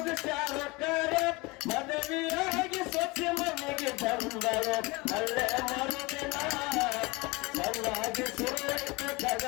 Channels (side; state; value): right; quieter; 24.7 dB